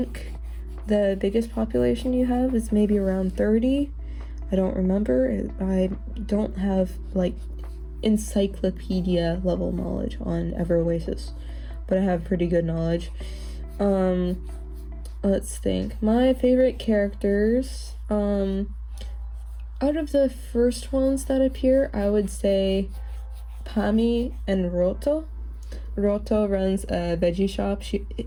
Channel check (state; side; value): identical; both; correlation 1.00